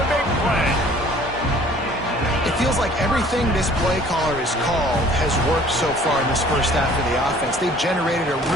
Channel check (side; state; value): both; normal; correlation 0.53